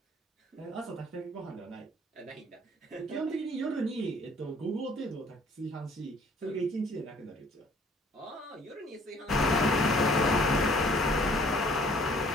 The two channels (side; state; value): both; normal; correlation 0.57